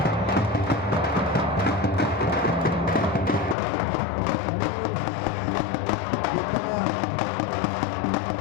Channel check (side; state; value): right; drops out; at 3.6 s